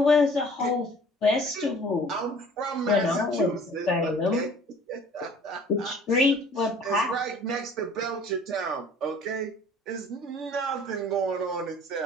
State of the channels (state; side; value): normal; both; correlation 0.50